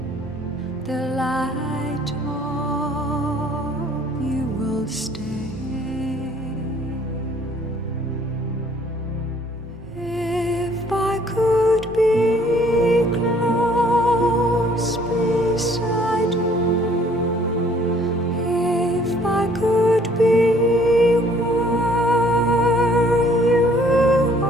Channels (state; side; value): normal; both; correlation 0.59